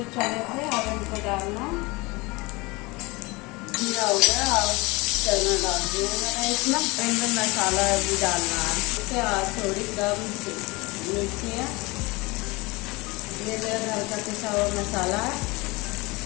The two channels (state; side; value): quieter; right; 24.3 dB